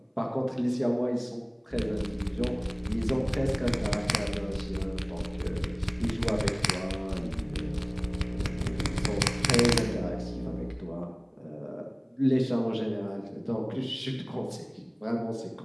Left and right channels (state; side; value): identical; both; correlation 1.00